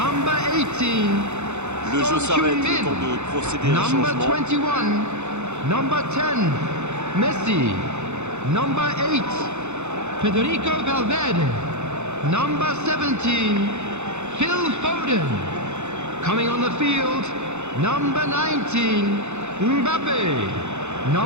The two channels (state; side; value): late; left; 0.83 ms